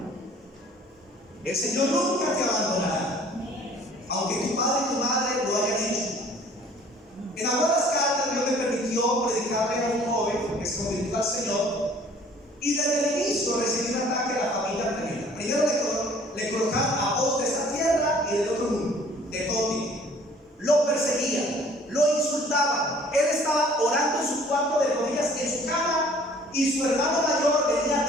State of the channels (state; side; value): normal; both; correlation 0.54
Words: El Señor nunca te abandonará, aunque tu padre y tu madre lo hayan hecho. En algunas cartas Dios me permitió predicarle a un joven que se convirtió al Señor, y desde el inicio recibí un ataque a la familia tremenda. Primero le colocaron a voz de esta tierra y del otro mundo, de todo tipo. Lo perseguían, lo insultaban. Él estaba orando en su cuarto de rodillas en su cama, y su hermano mayor venía